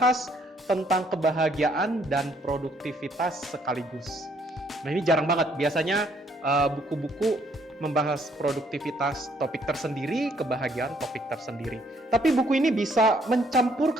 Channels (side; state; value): both; normal; correlation 0.67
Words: tentang kebahagiaan dan produktivitas sekaligus. Nah, ini jarang banget. Biasanya buku-buku membahas produktivitas topik tersendiri, kebahagiaan topik tersendiri. Tapi buku ini bisa